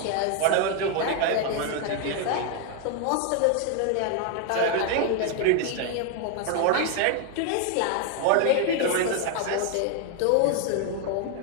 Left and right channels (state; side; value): different; both; correlation 0.01